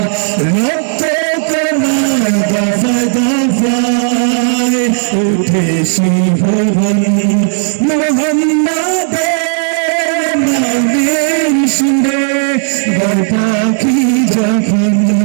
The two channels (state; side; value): silent; left; digital silence